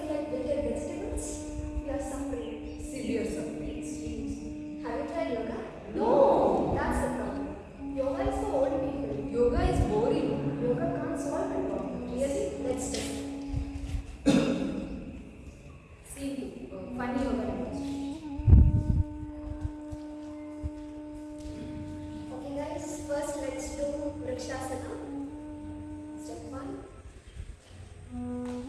like bitter vegetables? You are suffering. Severe suffering. Extremes. Have you tried yoga? No. That's the problem. Yoga is for old people. Yoga is boring. Yoga can't solve my problem. Really? Let's test. See, funny yoga demonstration. Okay guys, first let's do Vrikshasana. Step 1.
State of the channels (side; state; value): both; identical; correlation 1.00